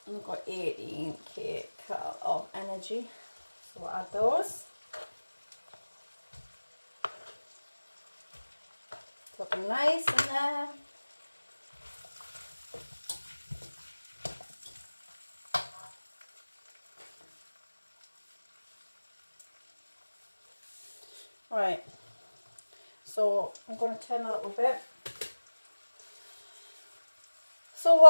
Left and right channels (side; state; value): both; inverted; correlation -1.00